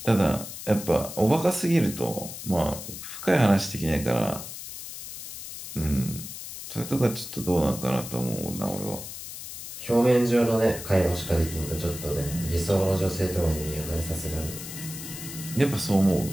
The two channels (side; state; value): left; noise; hiss, 10 dB below the sound